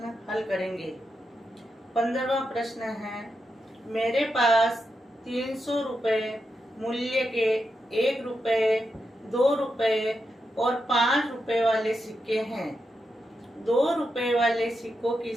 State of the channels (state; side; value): normal; both; correlation 0.86